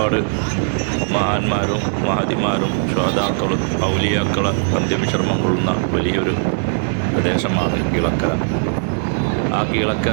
മഹാന്മാരും മഹതിമാരും ശ്വാതാക്കളും ഔലിയാക്കളും അന്ത്യവിശ്രമം കൊള്ളുന്ന വലിയൊരു പ്രദേശമാണ് കീഴക്കര. ആ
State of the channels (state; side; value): silent; left; 62 dB below the other